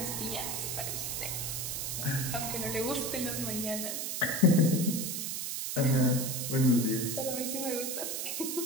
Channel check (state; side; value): noise; right; hiss, 2 dB below the sound